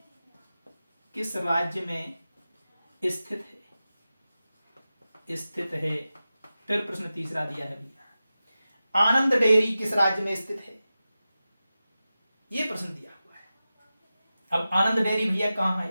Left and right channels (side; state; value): both; inverted; correlation -0.94